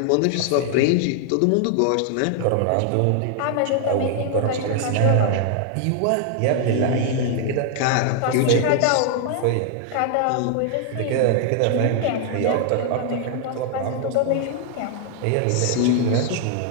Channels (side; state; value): both; different; correlation 0.00